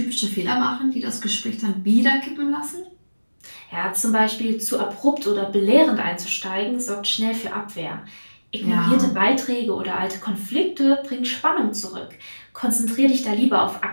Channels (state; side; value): inverted; both; correlation -1.00